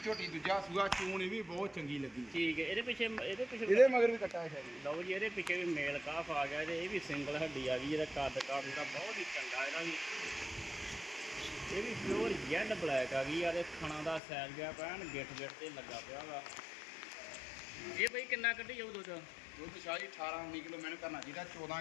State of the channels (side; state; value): right; drops out; at 14.2 s